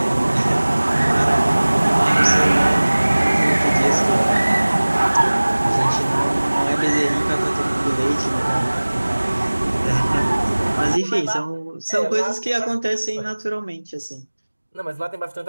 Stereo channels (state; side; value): inverted; both; correlation -1.00